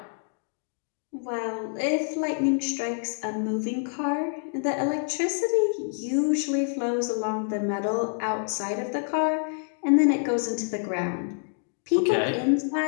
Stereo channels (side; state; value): right; silent; digital silence